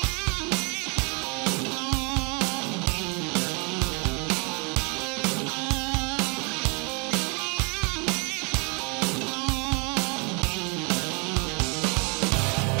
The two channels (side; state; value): left; quieter; 32.9 dB